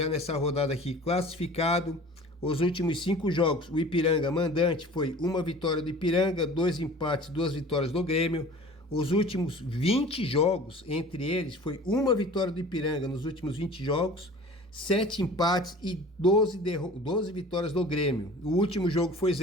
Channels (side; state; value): both; normal; correlation 0.43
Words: nessa rodada aqui classificado. Os últimos 5 jogos, o Ipiranga mandante foi 1 vitória do Ipiranga, 2 empates, 2 vitórias do Grêmio. Os últimos 20 jogos, entre eles, foi 1 vitória do Ipiranga nos últimos 20 jogos, 7 empates e 12 vitórias do Grêmio. O último jogo foi